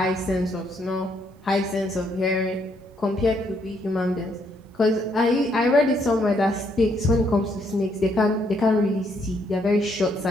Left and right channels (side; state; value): both; normal; correlation 0.72